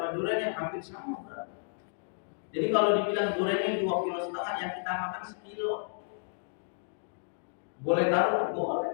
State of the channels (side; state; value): right; silent; digital silence